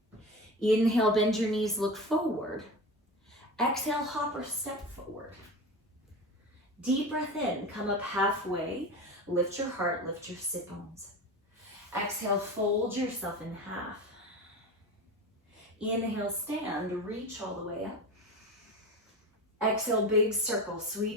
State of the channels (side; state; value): both; normal; correlation 0.28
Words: Inhale, bend your knees, look forward. Exhale, hop or step forward. Deep breath in, come up halfway. Lift your heart, lift your sit bones. Exhale, fold yourself in half. Inhale, stand, reach all the way up. Exhale, big circle,